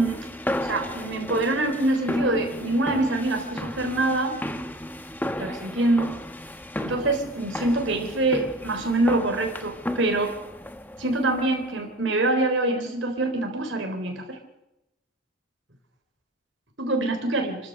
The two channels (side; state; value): both; normal; correlation 0.40